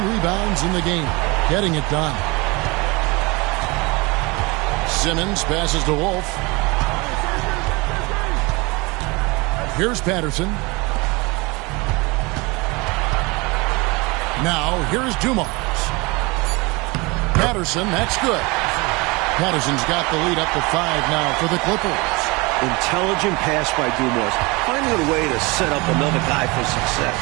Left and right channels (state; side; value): quieter; left; 25.6 dB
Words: rebounds in the game. Getting it done. Simmons passes to Wolf. Here's Patterson. Now, here's Dumars. Patterson, that's good. Patterson's got the lead up to 5 now for the Clippers. Intelligent pass by Dumars, finding a way to set up another guy for success.